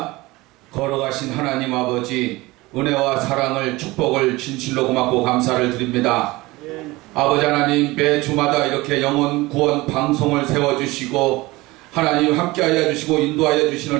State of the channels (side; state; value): left; quieter; 20.9 dB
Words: 걸어가신 하나님 아버지, 은혜와 사랑을, 축복을 진실로 고맙고 감사를 드립니다. 아버지 하나님, 매 주마다 이렇게 영혼 구원 방송을 세워주시고 하나님 함께하여 주시고 인도하여 주시는